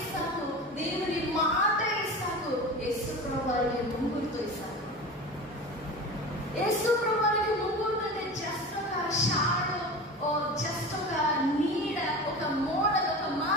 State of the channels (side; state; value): both; normal; correlation 0.32